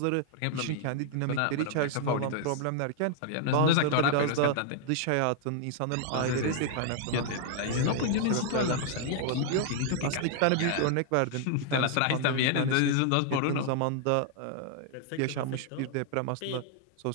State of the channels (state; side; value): different; both; correlation 0.00